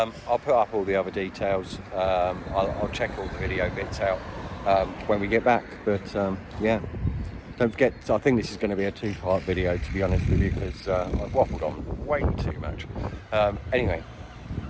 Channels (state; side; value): identical; both; correlation 1.00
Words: put up all the other details. I'll check all the video bits out when we get back. But yeah, don't forget, I think this is going to be a 2-part video, to be honest with you, because I've waffled on way too much. Anyway,